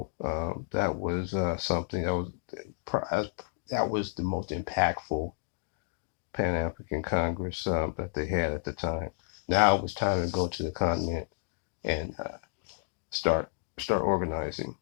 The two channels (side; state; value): right; silent; digital silence